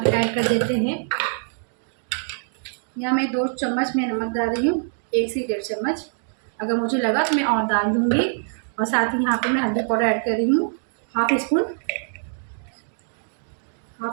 ऐड कर देते हैं। यहाँ मैं 2 चम्मच मैं नमक डाल रही हूँ, 1 से 1.5 चम्मच। अगर मुझे लगा तो मैं और डाल दूँगी। और साथ ही यहाँ पे मैं हल्दी पाउडर ऐड कर रही हूँ, हाफ़ स्पून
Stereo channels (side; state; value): left; silent; digital silence